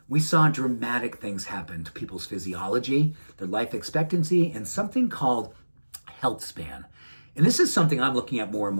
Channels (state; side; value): inverted; both; correlation -1.00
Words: we saw dramatic things happen to people's physiology, their life expectancy, and something called healthspan. And this is something I'm looking at more and